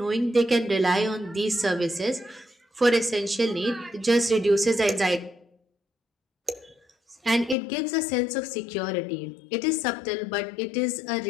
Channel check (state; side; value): drops out; right; at 7.6 s